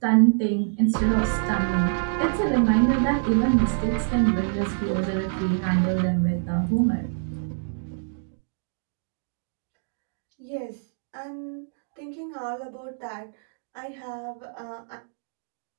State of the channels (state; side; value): silent; left; digital silence